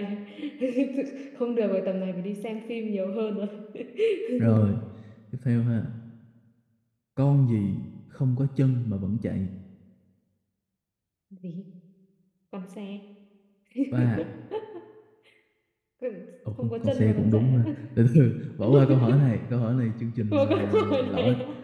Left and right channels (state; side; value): identical; both; correlation 1.00